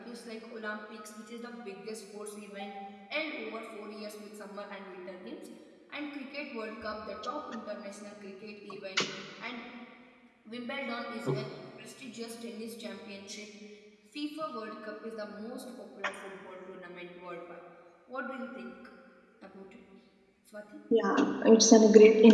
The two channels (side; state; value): both; identical; correlation 1.00